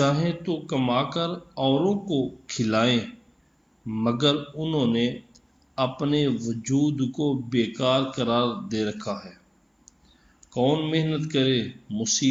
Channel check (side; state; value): both; identical; correlation 1.00